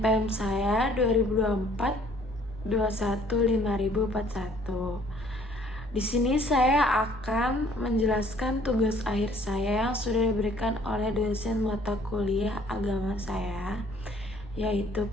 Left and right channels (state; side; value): normal; both; correlation 0.59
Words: saya 2024 21 5041. Di sini saya akan menjelaskan tugas akhir saya yang sudah diberikan oleh dosen mata kuliah agama saya, yaitu